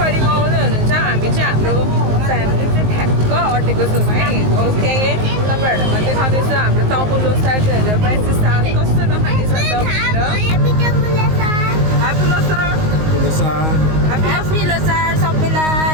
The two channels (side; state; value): left; late; 19 ms